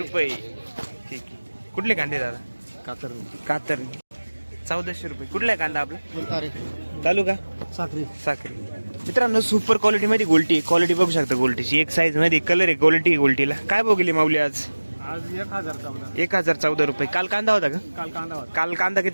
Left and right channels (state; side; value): inverted; both; correlation -1.00